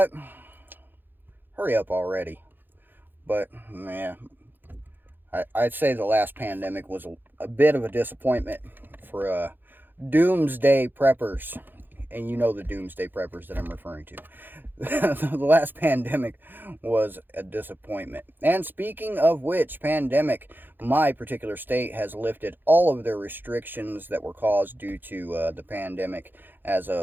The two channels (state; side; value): late; left; 0.093 ms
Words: Hurry up already. But, man, I'd say the last pandemic was a bit of a disappointment for doomsday preppers. And you know the doomsday preppers that I'm referring to. The last pandemic was a disappointment. And speaking of which, pandemic, my particular state has lifted all of their restrictions that were caused due to the pandemic as